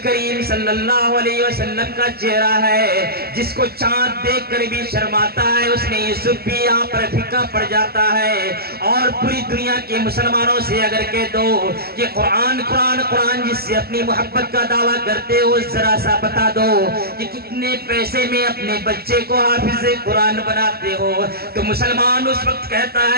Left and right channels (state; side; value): late; left; 0.45 ms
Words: کریم صلی اللہ علیہ وسلم کا چہرہ ہے. جس کو چاند دیکھ کر بھی شرماتا ہے، اس نے یوسف بھی یہاں پر پھیکا پڑ جاتا ہے. اور پوری دنیا کے مسلمانوں سے اگر کہہ دو کہ قرآن قرآن قرآن جس سے اپنی محبت کا دعویٰ کرتے ہو، ذرا سا بتا دو کہ کتنے پیسے میں اپنے بچے کو حافظ قرآن بناتے ہو، تو مسلمان اس وقت کہتا